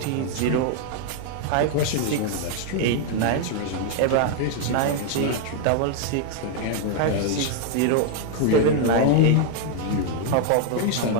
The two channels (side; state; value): both; different; correlation 0.00